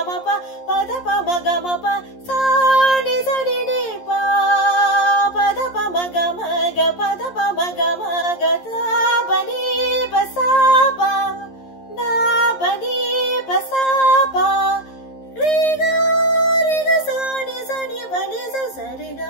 ma pa pa da pa ma ga ma pa sa ni sa ni ni pa pa da pa ma ga pa da pa ma ga da pa ni pa sa pa da pa ni pa sa pa re ga sa ni pa ni sa re ga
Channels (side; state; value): right; late; 11 ms